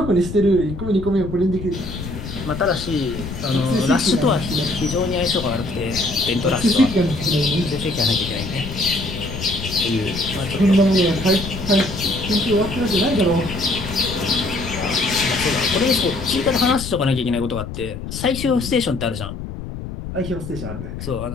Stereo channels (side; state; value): left; noise; rumble, 8 dB below the sound